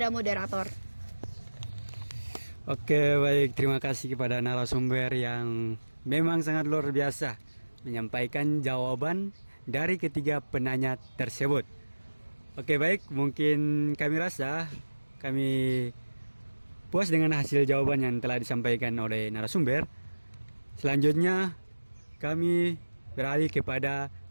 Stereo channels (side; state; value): both; inverted; correlation -1.00